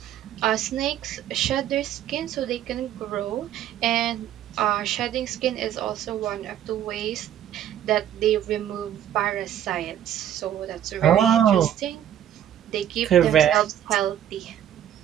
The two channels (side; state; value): left; quieter; 10.8 dB